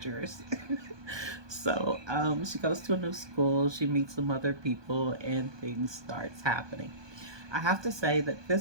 So, she goes to a new school, she meets some other people, and things starts happening. I have to say that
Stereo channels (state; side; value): late; left; 1.2 ms